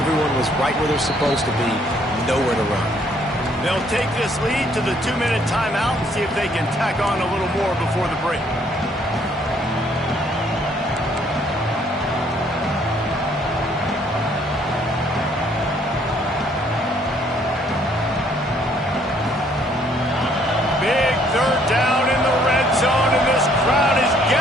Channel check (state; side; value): normal; both; correlation 0.65